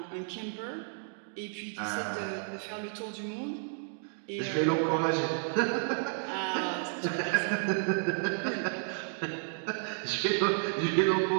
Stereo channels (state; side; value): silent; left; 57 dB below the other